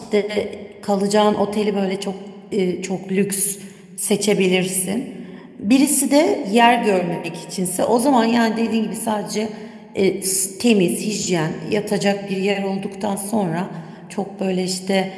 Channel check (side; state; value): both; identical; correlation 1.00